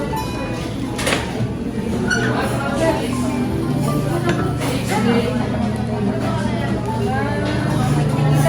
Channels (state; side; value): identical; both; correlation 1.00